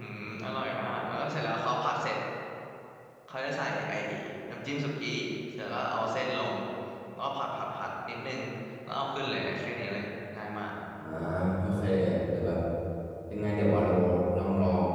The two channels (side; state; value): both; identical; correlation 1.00